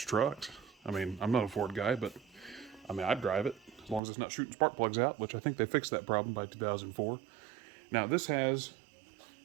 trucks. I mean, I'm not a Ford guy, but I mean, I'd drive it as long as it's not shooting spark plugs out, which I think they fixed that problem by 2004. Now, this has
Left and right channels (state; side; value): drops out; left; at 4.0 s